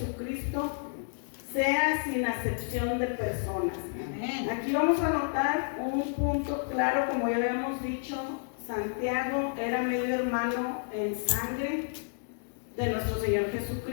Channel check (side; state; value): right; silent; digital silence